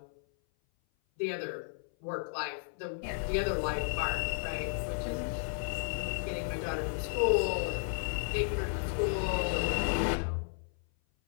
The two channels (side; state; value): right; silent; 55 dB below the other